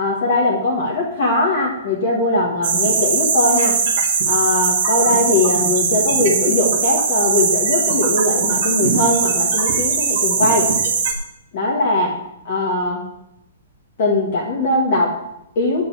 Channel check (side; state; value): both; inverted; correlation -0.41